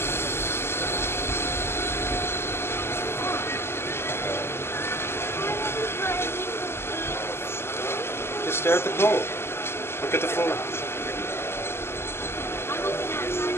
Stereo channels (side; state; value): right; late; 0.12 ms